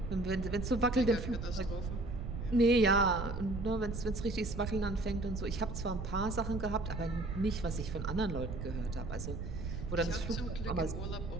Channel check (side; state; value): right; noise; rumble, 5 dB below the sound